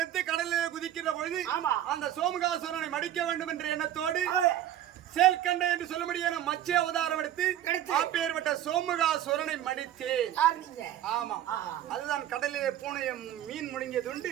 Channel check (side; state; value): left; quieter; 11.8 dB